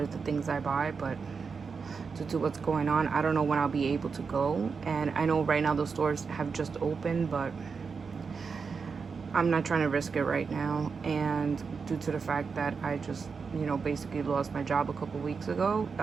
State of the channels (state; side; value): quieter; left; 5.3 dB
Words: the things I buy, but due to what's going on, I don't know when I'll be able to go. And I know right now the stores have just opened, but I'm not trying to risk it right now. And due to the fact that I just, you know, basically lost my job a couple weeks ago,